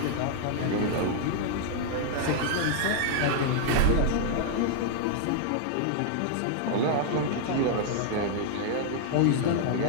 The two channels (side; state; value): both; different; correlation 0.00